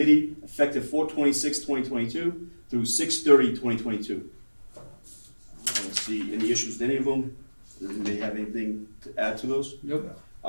effective 4/26/2022 through 6/30/2022. I don't see any issues with any of them. Does anybody have anything to add to those? Nope.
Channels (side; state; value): both; inverted; correlation -1.00